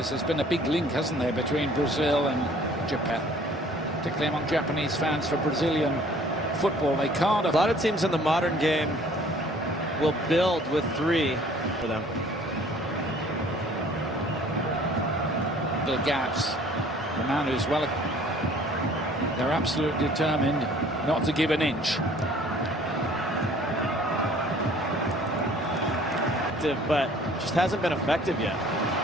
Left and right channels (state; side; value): normal; both; correlation 0.54